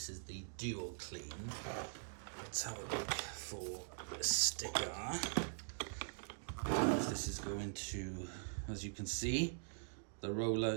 is the Duo Clean. Let's have a look for a sticker. This is going to, as you can see, the roller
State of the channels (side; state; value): left; silent; digital silence